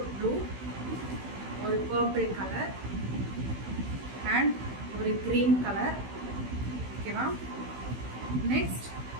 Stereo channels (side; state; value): left; late; 16 ms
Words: ப்ளூ, ஒரு பர்பிள் கலர் அண்ட் ஒரு கிரீன் கலர், ஓகேவா. நெக்ஸ்ட்